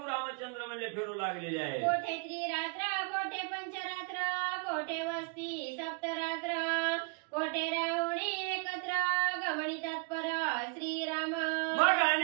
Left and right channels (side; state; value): left; quieter; 36.0 dB